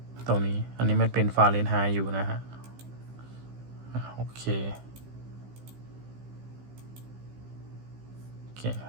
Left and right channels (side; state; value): left; late; 15 ms